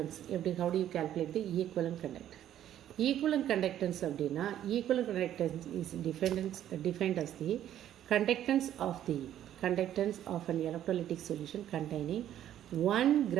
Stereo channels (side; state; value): left; quieter; 11.4 dB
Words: எப்படி, how do you calculate the equivalent conductance? Equivalent conductance அப்படின்னா equivalent conductance is defined as the conductance of an electrolytic solution containing 1